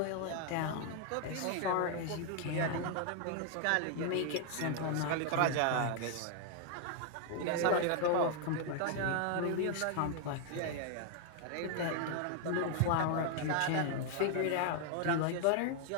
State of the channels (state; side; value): different; both; correlation 0.00